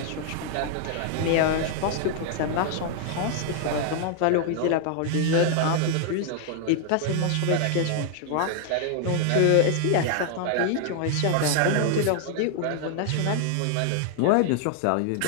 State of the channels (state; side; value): different; both; correlation 0.00